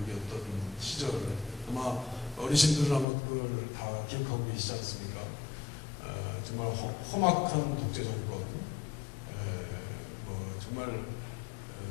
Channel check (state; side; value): drops out; right; at 3.1 s